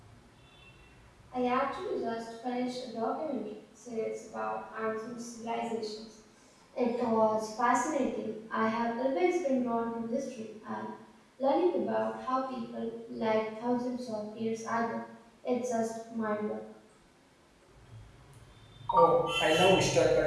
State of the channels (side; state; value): both; identical; correlation 1.00